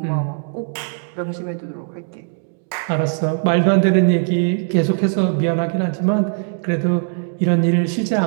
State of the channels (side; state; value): left; silent; 61 dB below the other